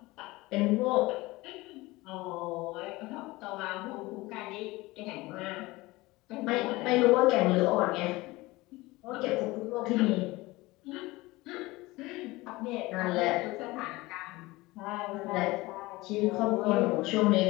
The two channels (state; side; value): quieter; right; 20.7 dB